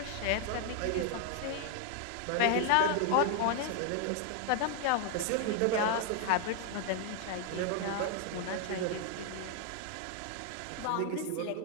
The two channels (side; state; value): both; different; correlation 0.00